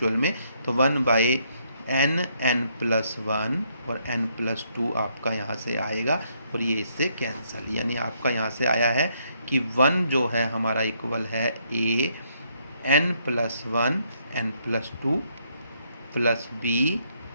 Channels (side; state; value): both; inverted; correlation -0.72